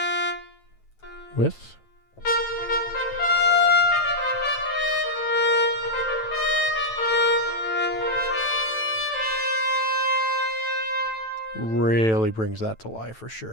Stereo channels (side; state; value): right; late; 9.1 ms